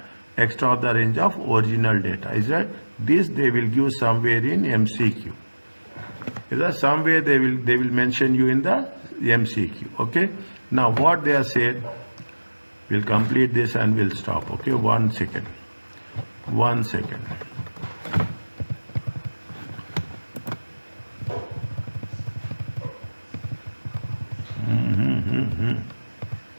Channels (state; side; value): inverted; both; correlation -1.00